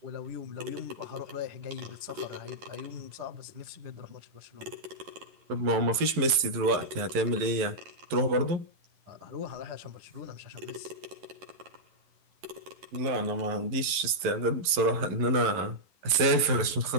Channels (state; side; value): late; left; 11 ms